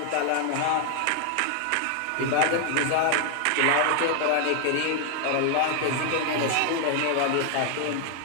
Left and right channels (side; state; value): both; different; correlation 0.00